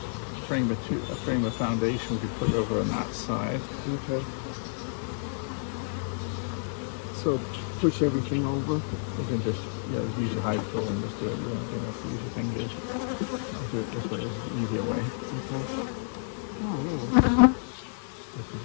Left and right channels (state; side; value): silent; right; digital silence